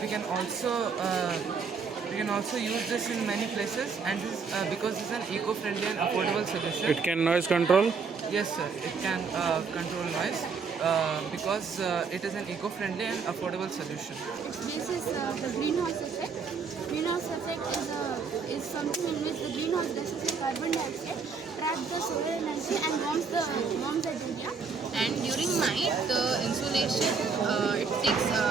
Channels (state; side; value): quieter; left; 5.3 dB